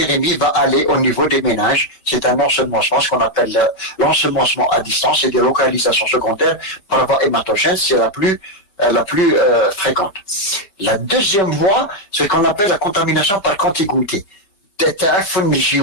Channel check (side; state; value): right; late; 5.2 ms